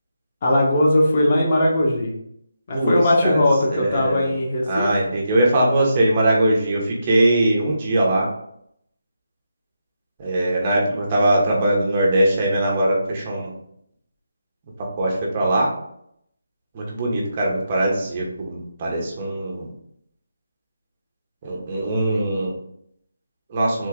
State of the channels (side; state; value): both; inverted; correlation -0.84